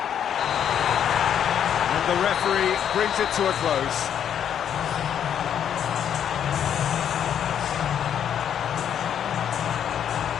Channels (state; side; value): quieter; right; 9.1 dB